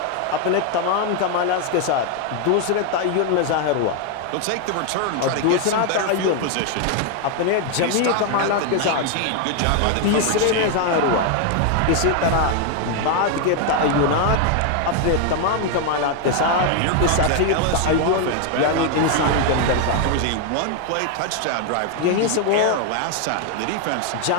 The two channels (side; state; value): both; different; correlation 0.01